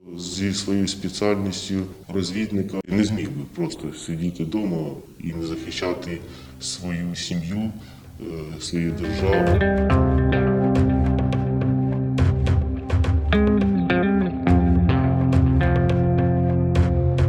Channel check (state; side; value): identical; both; correlation 1.00